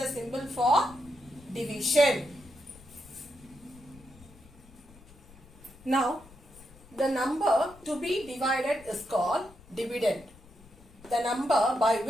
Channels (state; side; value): noise; left; rumble, 23 dB below the sound